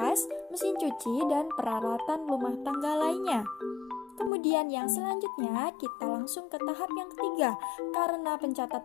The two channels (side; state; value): right; drops out; at 4.3 s